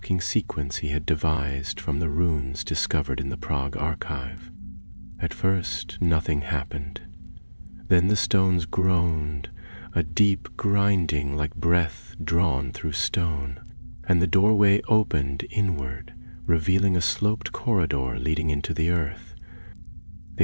sequence he had devised from the runes discovered in the Prague archive. At first, nothing happened. Then the stones groaned, a deep grinding like breath drawn through stone, and the doorway opened inward, revealing a sloped corridor leading into the earth.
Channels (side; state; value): both; inverted; correlation -1.00